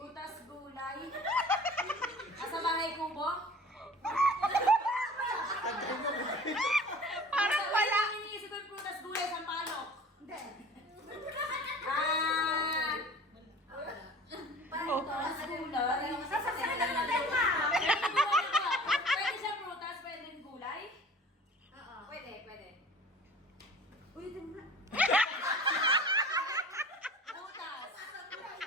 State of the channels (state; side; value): normal; both; correlation 0.44